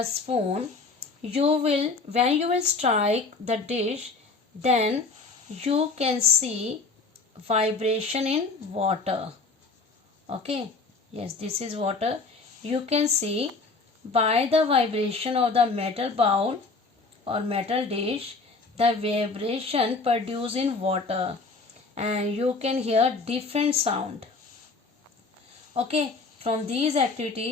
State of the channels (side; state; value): right; quieter; 4.0 dB